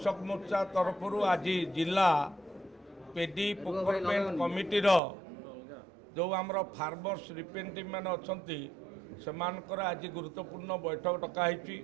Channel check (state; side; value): drops out; left; at 5.0 s